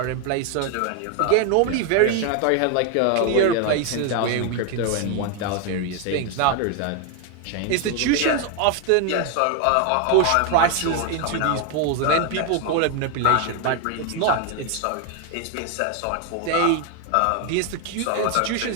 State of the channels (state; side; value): different; both; correlation 0.01